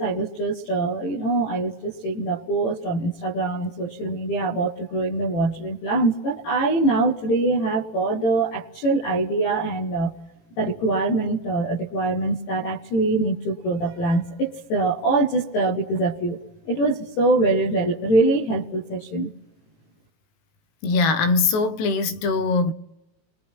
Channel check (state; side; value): late; right; 18 ms